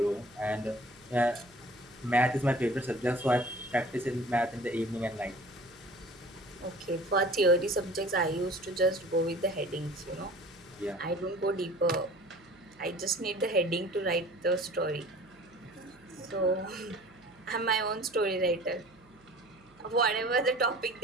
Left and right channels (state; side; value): noise; right; hum, 30 dB below the sound